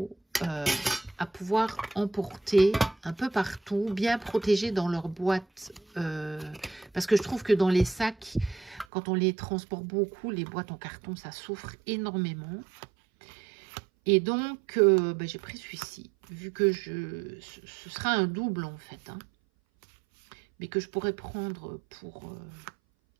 à pouvoir emporter un peu partout, bien protégés dans leur boîte. Parce que je trouve que dans les sacs, quand on les transporte beaucoup, les boîtes en carton, ça souffre énormément. Et donc, bah, j'ai pris celui-ci, vu que ce sera un double en fait, hein, mais que je pourrais prendre pour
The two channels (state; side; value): drops out; left; at 8.8 s